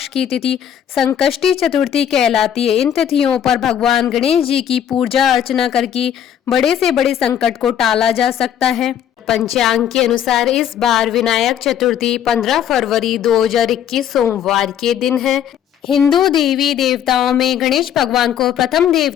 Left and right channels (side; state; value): right; quieter; 9.7 dB